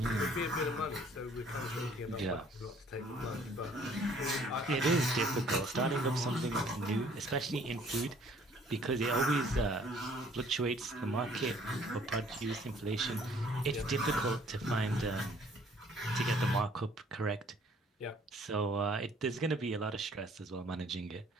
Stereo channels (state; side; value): normal; both; correlation 0.58